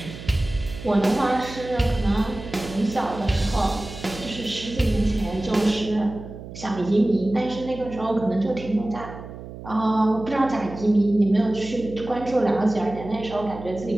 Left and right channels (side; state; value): right; noise; hum, 13 dB below the sound